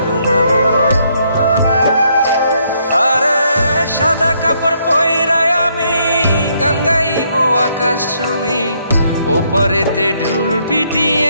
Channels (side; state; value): both; inverted; correlation -0.72